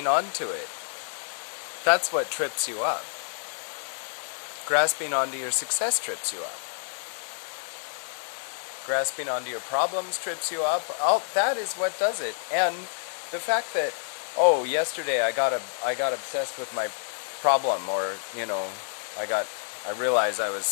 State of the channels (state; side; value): silent; right; digital silence